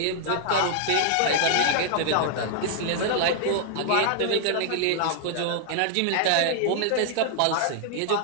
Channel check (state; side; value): different; both; correlation 0.00